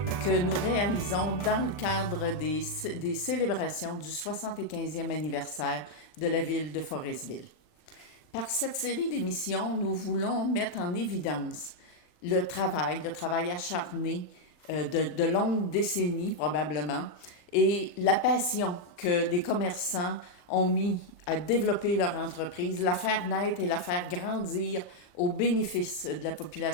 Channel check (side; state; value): right; late; 39 ms